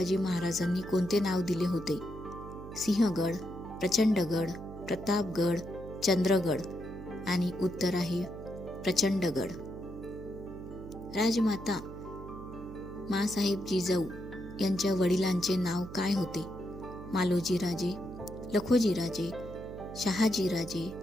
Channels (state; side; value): noise; right; hum, 12 dB below the sound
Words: महाराजांनी कोणते नाव दिले होते? सिंहगड, प्रचंडगड, प्रतापगड, चंद्रगड. आणि उत्तर आहे प्रचंडगड. राजमाता माँसाहेब जिजाऊ यांच्या वडिलांचे नाव काय होते? मालोजीराजे, लखोजीराजे, शहाजीराजे,